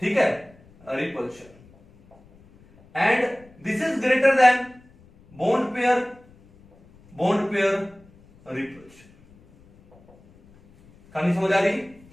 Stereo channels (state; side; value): noise; left; rumble, 27 dB below the sound